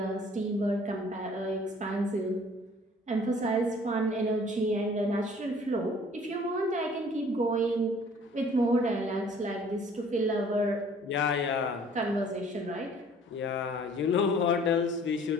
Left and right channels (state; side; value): normal; both; correlation 0.54